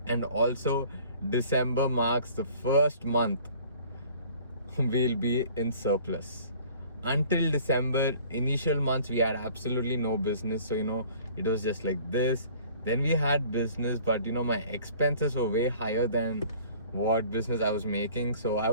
And also, December marks the first month we'll be in surplus. Until December, initial months, we had absolutely no business. So, it was just like this. Then we had business, but, my expenses were way higher than what business I was making. So I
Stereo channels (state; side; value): inverted; both; correlation -0.51